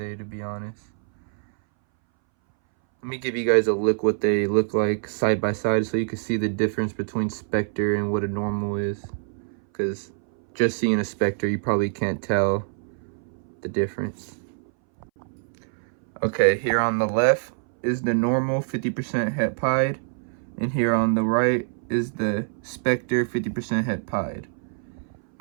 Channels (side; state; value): left; silent; 61 dB below the other